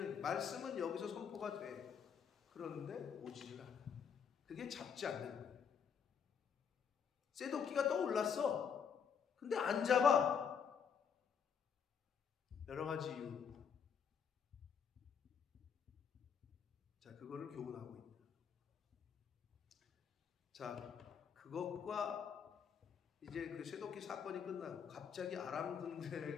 말씀은 여기서 선포가 돼. 그런데 오지를 않아. 그게 잡지 않는 거예요. 쇠도끼가 떠올랐어. 근데 안 잡아. 여러 가지 이유. 자, 그거를 교훈하고 있다. 자, 그것과 이제 그 쇠도끼 사건이 끝나고 갑자기 아람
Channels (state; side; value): quieter; right; 7.1 dB